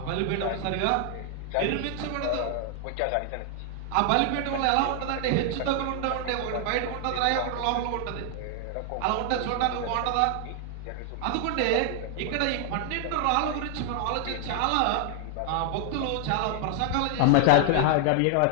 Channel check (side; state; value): both; different; correlation 0.00